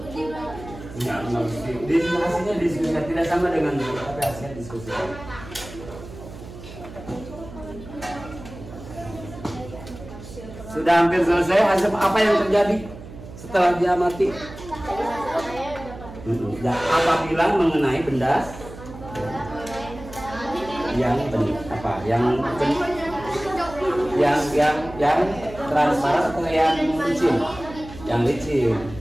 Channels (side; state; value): right; noise; hum, 14 dB below the sound